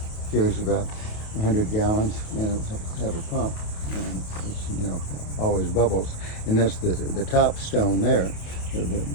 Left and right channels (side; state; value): right; late; 28 ms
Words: Carries about 100 gallons, and it'll have a pump, and it's, always bubbles. And that's the top stone there.